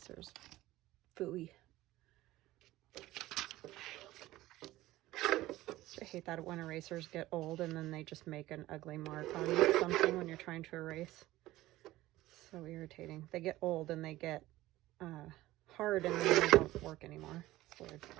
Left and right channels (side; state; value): left; quieter; 16.7 dB